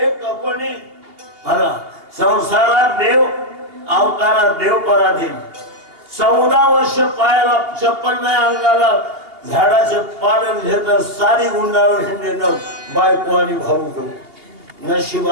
मला संसारात देव, अवतारात देव पराधीन. 14 वर्ष पायाला चप्पल नाही, अंगाला झाडाचे पालन घेत सारी गुंडाळून हिंडणं बायको आणि भाऊ घेऊ.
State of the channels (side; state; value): left; late; 2.8 ms